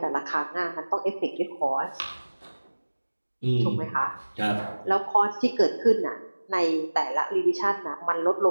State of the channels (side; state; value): both; inverted; correlation -1.00